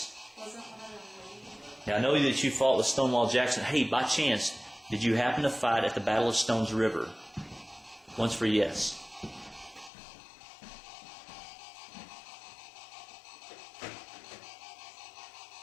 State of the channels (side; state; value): right; drops out; at 9.9 s